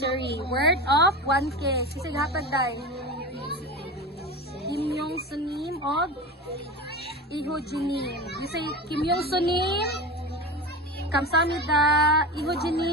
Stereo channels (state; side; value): normal; both; correlation 0.27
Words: worth of 1K. Sisig hatag day. Kim Yong Sunim of Iho Jinim. You say Kim Yong Sunim, kamsamida, Iho